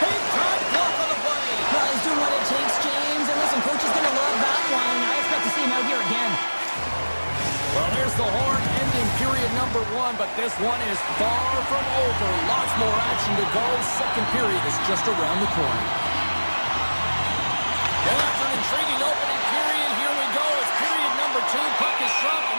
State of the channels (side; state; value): both; inverted; correlation -1.00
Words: time block on the play. Well, he's doing what it takes, James, and listen, coach is going to love that one. I expect to see him out here again. Well, there's the horn ending period number 1, but this one is far from over. Lots more action to go. Second period is just around the corner. Well, after an intriguing opening period, here we go. It's period number 2. Puck is dropped,